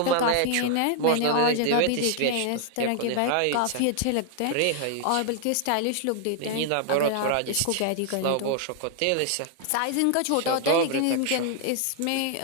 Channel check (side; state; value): both; different; correlation 0.00